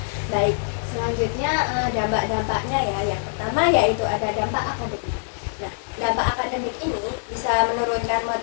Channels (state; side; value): silent; right; digital silence